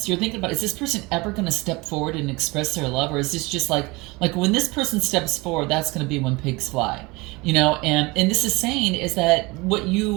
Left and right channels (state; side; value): quieter; left; 24.1 dB